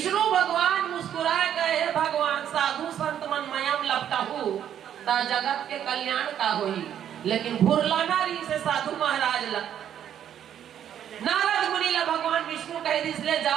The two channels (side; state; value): left; quieter; 9.8 dB